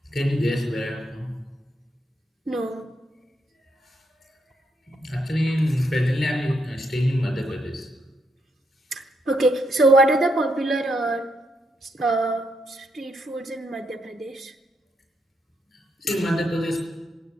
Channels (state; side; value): normal; both; correlation 0.78